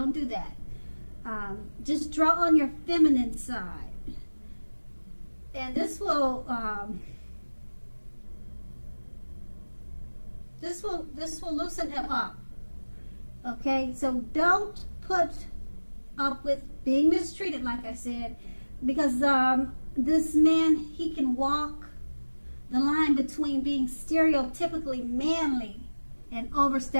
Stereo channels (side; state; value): both; inverted; correlation -1.00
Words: do that. Just draw on your feminine side. And this will loosen him up. Okay, so don't put up with being mistreated, like I said, because this man, he can walk the line between being stereotypically manly and